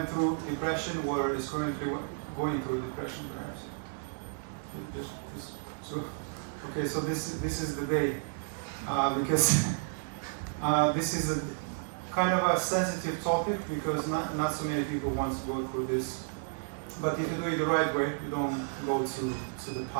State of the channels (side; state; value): left; silent; 56 dB below the other